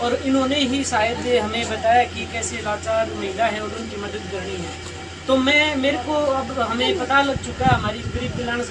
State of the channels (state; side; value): identical; both; correlation 1.00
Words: और इन्होंने ही शायद हमें बताया कि कैसे लाचार महिला है और उनकी मदद करनी है। तो मेरे को अब हमें पता लग चुका है हमारी गरीब कल्याण